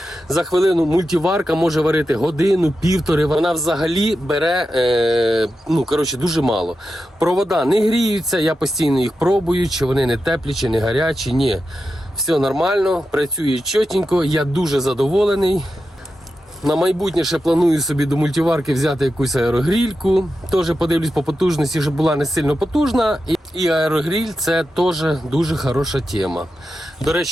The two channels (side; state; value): both; normal; correlation 0.90